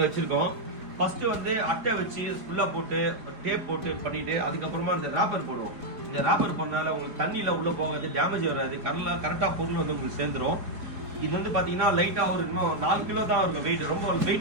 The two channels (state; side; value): late; left; 4.1 ms